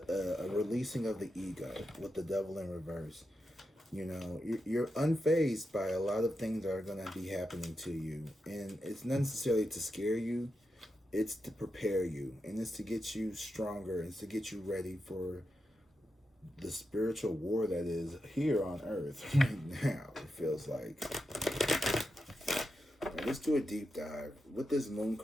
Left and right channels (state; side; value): normal; both; correlation 0.88